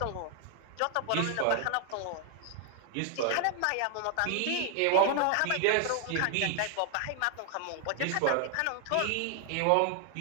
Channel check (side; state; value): both; different; correlation 0.00